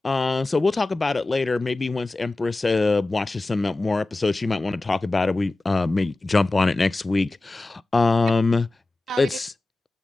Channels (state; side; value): quieter; right; 3.1 dB